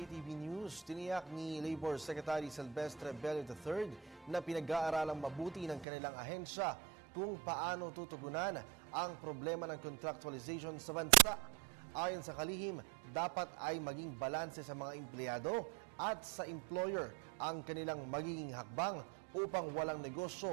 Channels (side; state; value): left; drops out; at 5.9 s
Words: News, tiniyak ni Labor Secretary Silvestre Bello III na pinag-aaralang mabuti ng kanilang ahensya kung paano tutugunan ang problema ng contractualization sa bansa. Ayon sa kalihim, dapat ay maging balanse sa mga empleyado at sa employer ang kanilang magiging hakbang upang walang